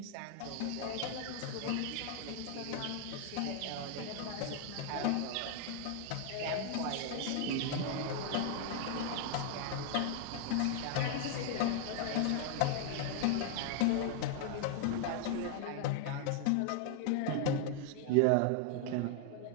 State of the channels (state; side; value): different; both; correlation 0.00